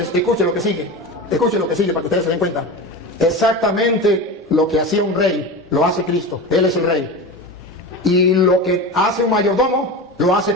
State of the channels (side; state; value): both; normal; correlation 0.26